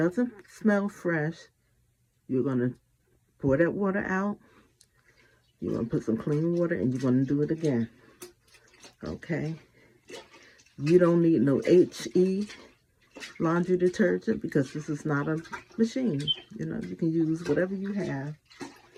smell fresh, you're going to pour that water out. You're going to put some clean water and you're going to do it again. Okay, you don't need no HE laundry detergent because this is not a machine. You know, you can use whatever you have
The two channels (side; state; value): both; identical; correlation 1.00